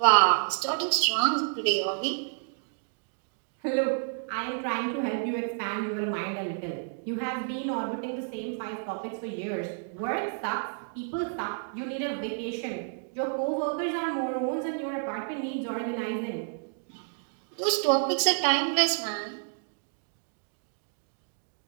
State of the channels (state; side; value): silent; left; digital silence